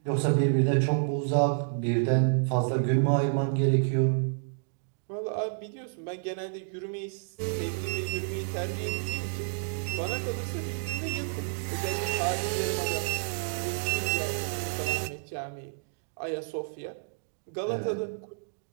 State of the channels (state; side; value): silent; left; digital silence